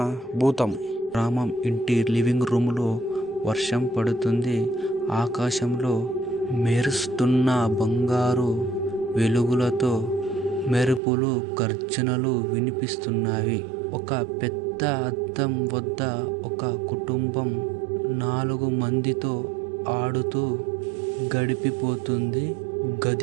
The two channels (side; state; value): left; drops out; at 11.0 s